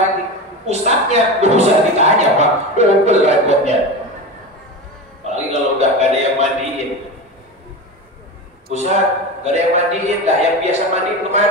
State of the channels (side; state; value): both; normal; correlation 0.24